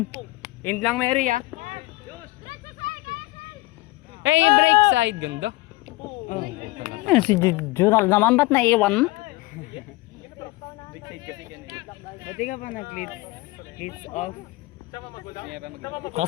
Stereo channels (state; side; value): quieter; right; 20.8 dB